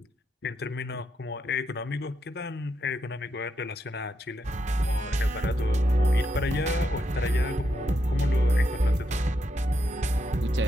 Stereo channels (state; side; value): normal; both; correlation 0.82